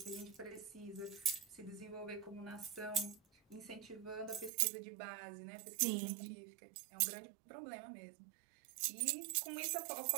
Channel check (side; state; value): left; drops out; at 4.5 s